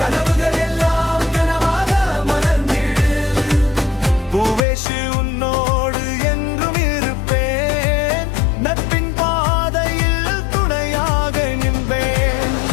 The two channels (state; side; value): drops out; right; at 4.6 s